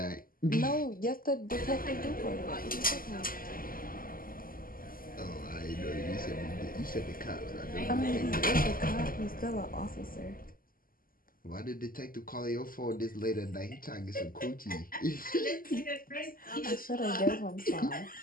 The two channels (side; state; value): right; late; 0.42 ms